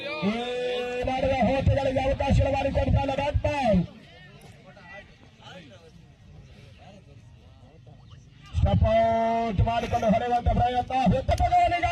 ಈ ನಡೆದ ಹೋಟೆಗಳಿಗೆ ಅವಕಾಶ ಮಾಡಿಕೊಡ್ತಾನೆ ಬ್ಯಾಟ್ ಬಾಲ್. ಸ್ಟಪೌಟ್ ಮಾಡಿಕೊಂಡು ಹೊಡೆಯುವಂತ ಪ್ರಯತ್ನ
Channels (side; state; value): both; identical; correlation 1.00